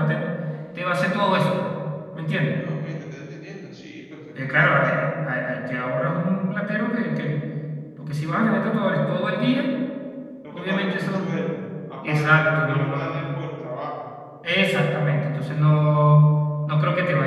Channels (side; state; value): both; identical; correlation 1.00